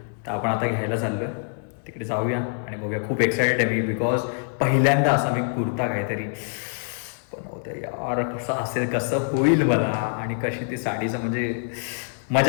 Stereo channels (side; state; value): right; silent; digital silence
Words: तर आपण आता घ्यायला चाललो आहे, तिकडे जाऊया आणि बघूया. खूप एक्सायटेड आहे मी बिकॉज पहिल्यांदा असा मी कुर्ता काहीतरी बनवते यार. कसा असेल, कसं होईल मला आणि कशी ती साडीचं म्हणजे